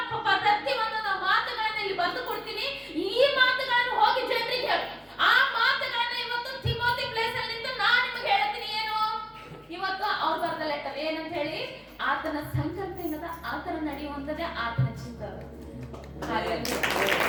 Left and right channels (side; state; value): both; identical; correlation 1.00